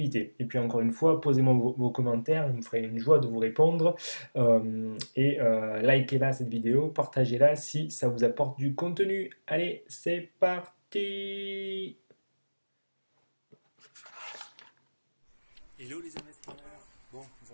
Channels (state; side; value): inverted; both; correlation -1.00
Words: Et puis encore une fois, posez-moi vos commentaires, je me ferai une joie de vous répondre. Likez-la cette vidéo, partagez-la si ça vous apporte du contenu. Allez, c'est parti! Hello les investisseurs. Bon,